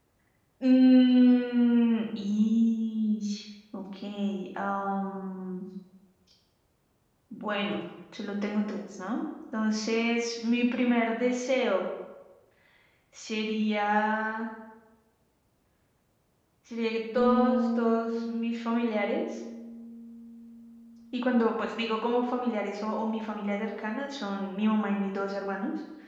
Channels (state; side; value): identical; both; correlation 1.00